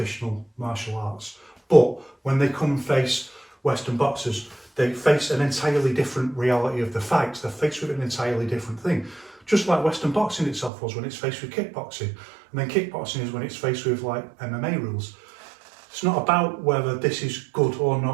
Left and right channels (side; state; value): left; drops out; at 10.7 s